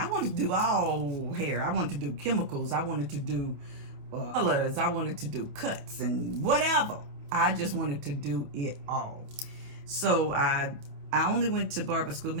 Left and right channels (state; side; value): late; left; 28 ms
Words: wanted to do all hair. I wanted to do chemicals. I wanted to do colors. I wanted to do cuts and whatever. I just wanted to do it all. So I only went to barber school